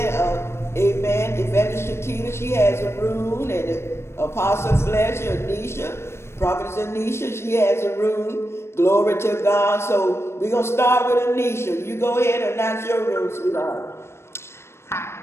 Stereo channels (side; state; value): right; late; 0.12 ms